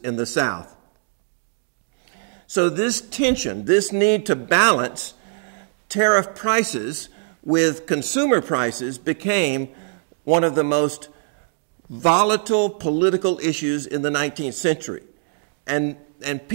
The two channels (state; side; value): silent; left; digital silence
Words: the South. So this tension, this need to balance tariff prices with consumer prices became one of the most volatile political issues in the 19th century. And